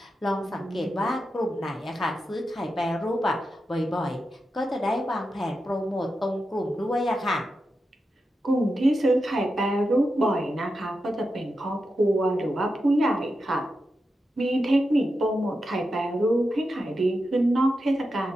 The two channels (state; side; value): normal; both; correlation 0.89